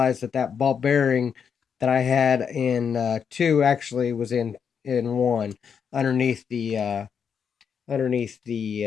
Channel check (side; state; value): right; quieter; 7.0 dB